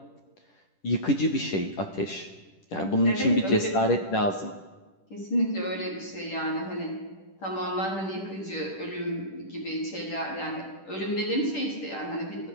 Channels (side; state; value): right; late; 10 ms